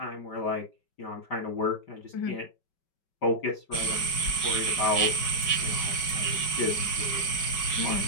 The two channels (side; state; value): right; late; 5.3 ms